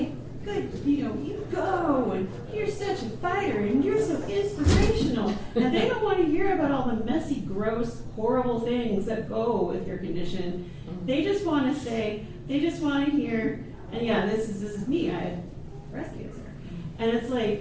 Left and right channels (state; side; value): identical; both; correlation 1.00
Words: good, you go, and you're such a fighter, and you're so inspirational. And they don't want to hear about all the messy, gross, horrible things that go with your condition. They just want to hear, and yeah, this is me, I had breast cancer. And it's